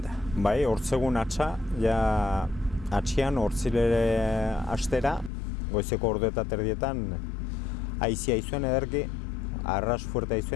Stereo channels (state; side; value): drops out; right; at 5.3 s